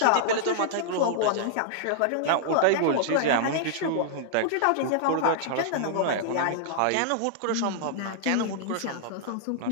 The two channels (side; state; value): both; different; correlation -0.01